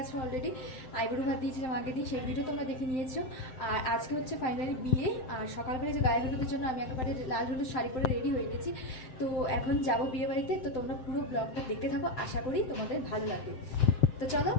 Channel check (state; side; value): late; right; 7.8 ms